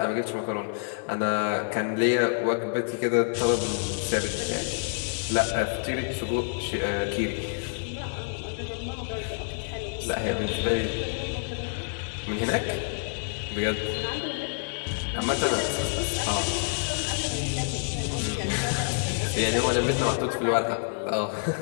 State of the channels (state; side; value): silent; right; digital silence